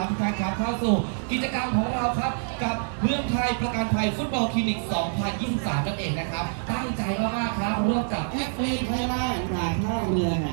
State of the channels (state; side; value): silent; left; digital silence